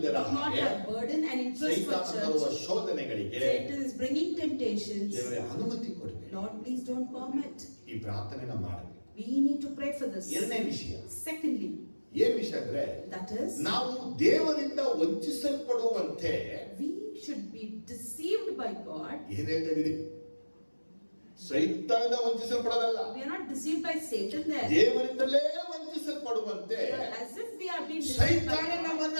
do not ಹಾಗೆ, have burden and interest for ಸೈತಾನ ತರುವ church. ಶೋಧನೆಗಳಿಗೆ Satan is bringing temptations. ದೇವರೇ ಅನುಮತಿ ಕೊಡಬೇಡಿ. Lord, please don't permit. ಈ ಪ್ರಾರ್ಥನೆನ ಮಾಡಬೇಕು. We need to pray for this. ಎರಡನೇ ವಿಷಯ, Secondly, ಏನ್ ವಿಷಯ ಅಂದ್ರೆ, that is, ನಾವು ದೇವರಿಂದ ವಂಚಿಸಲ್ಪಡುವಂತೆ we should be deceived by God. ಏನ್ ಹೇಳ್ತಾ ಇದೀರಿ? ಸೈತಾನದಿಂದ ವಂಚಿಸಲ್ಪಡೋದಲ್ಲ, We are not deceived by Satan there. ದೇವರಿಂದಲೇ ವಂಚಿಸಲ್ಪಡುವಂತೆ As if we are being deceived by ಸೈತಾನ God. ನಮ್ಮನ್ನ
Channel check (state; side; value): inverted; both; correlation -1.00